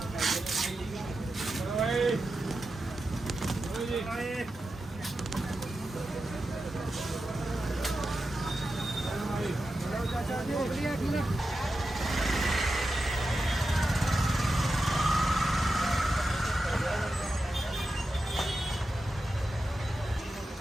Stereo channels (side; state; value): both; normal; correlation 0.90